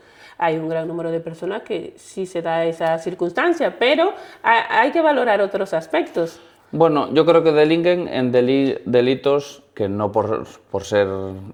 hay un gran número de personas que sí se da esa circunstancia, pero hay que valorar otros aspectos. Bueno, yo creo que delinquen en delitos que no por ser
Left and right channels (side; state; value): both; identical; correlation 1.00